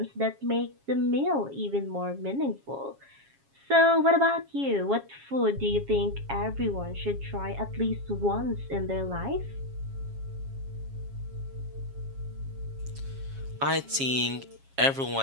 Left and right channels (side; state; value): left; late; 7.3 ms